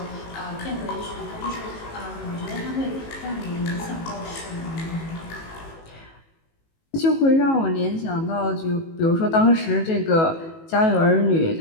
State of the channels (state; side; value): late; right; 18 ms